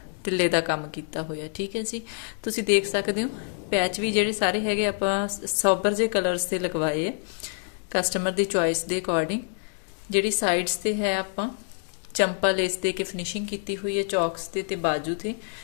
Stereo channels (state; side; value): silent; right; 59 dB below the other